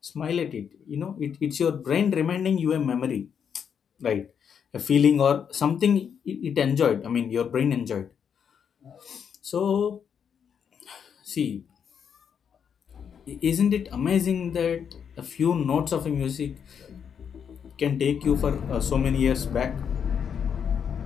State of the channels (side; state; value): right; quieter; 7.5 dB